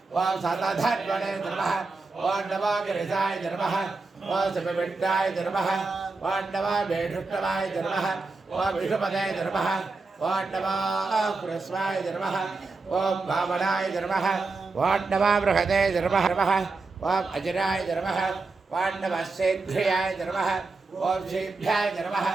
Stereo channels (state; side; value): quieter; left; 3.8 dB